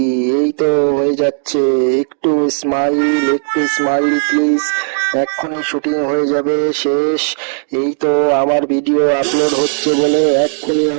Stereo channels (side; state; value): left; silent; digital silence